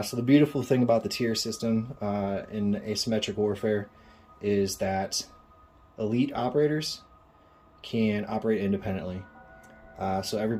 So the beautiful thing about the tier system in asymmetric warfare is that elite operators can operate independently. So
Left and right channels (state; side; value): identical; both; correlation 1.00